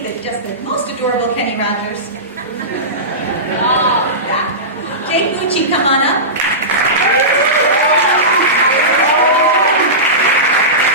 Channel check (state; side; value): normal; both; correlation -0.19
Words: just the most adorable Kenny Rogers? Yeah. Jake Gucci, come on up.